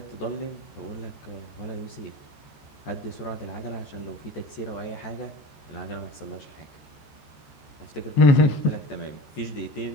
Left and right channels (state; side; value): late; right; 14 ms